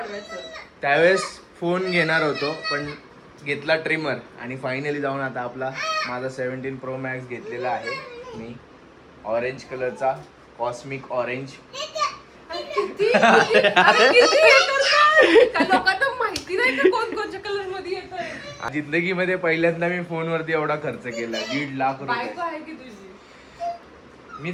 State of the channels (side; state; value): both; identical; correlation 1.00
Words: त्यावेळेस फोन घेणार होतो पण घेतला ट्रिमर. आणि फायनली जाऊन आता आपला माझा 17 Pro Max घेतलेला आहे मी. ऑरेंज कलरचा, कॉस्मिक ऑरेंज. जिंदगीमध्ये पहिल्यांदा मी फोनवरती एवढा खर्च केला. 1.5 लाख रुपये